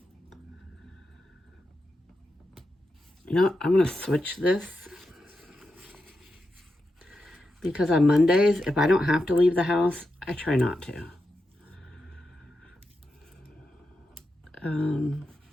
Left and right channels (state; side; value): normal; both; correlation 0.88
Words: You know, I'm going to switch this. Because on Mondays, if I don't have to leave the house, I try not to.